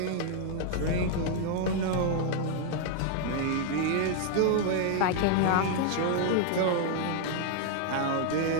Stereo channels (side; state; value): both; different; correlation 0.00